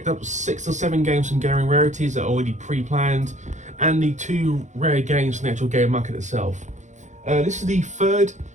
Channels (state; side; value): late; left; 0.35 ms